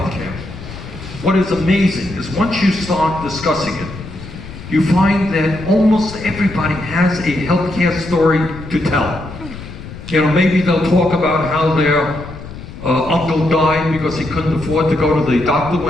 what is amazing is once you start discussing it, you find that almost everybody has a healthcare story to tell. Maybe they'll talk about how their uncle died because he couldn't afford to go to the doctor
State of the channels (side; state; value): left; noise; rumble, 13 dB below the sound